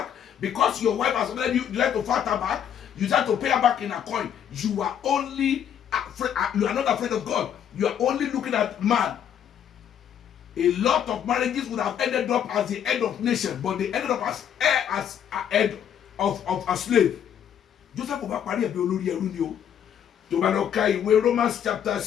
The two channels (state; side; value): quieter; right; 9.1 dB